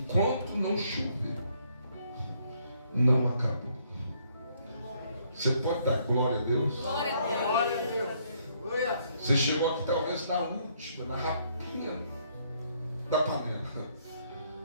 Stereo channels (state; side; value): inverted; both; correlation -0.69